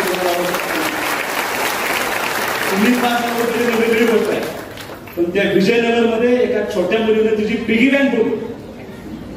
तुम्ही 5,000 रुपये वेगळी गोष्ट आहे. पण त्या विजयनगरमध्ये एका छोट्या मुलीने तिची पिगी बँक ठेवली.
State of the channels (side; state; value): both; identical; correlation 1.00